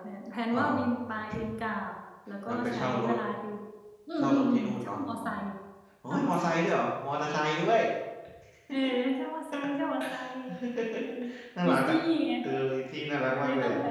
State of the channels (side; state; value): both; identical; correlation 1.00